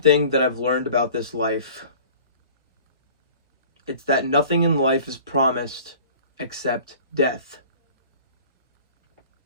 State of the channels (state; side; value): inverted; both; correlation -0.45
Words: that I've learned about this life, it's that nothing in life is promised except death.